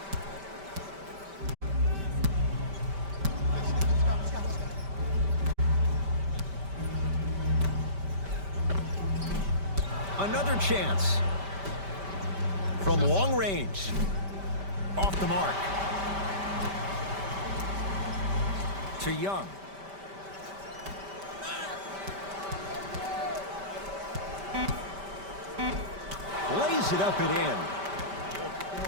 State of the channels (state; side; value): late; left; 5.1 ms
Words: Another chance. From long range. Off the mark. To Young. Lays it up and in.